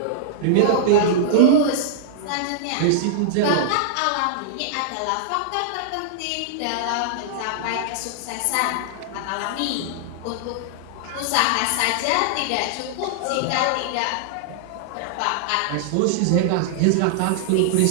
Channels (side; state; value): both; different; correlation -0.01